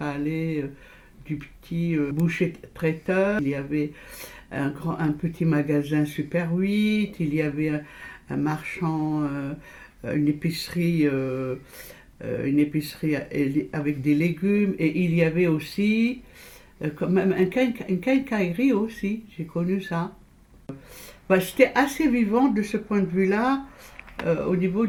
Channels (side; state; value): both; identical; correlation 1.00